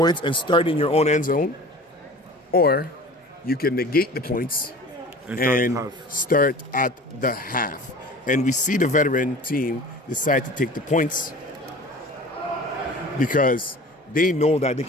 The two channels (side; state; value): both; normal; correlation 0.41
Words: and start in your own end zone. Or you can negate the points and start at the half. And we see the veteran team decide to take the points because they know that they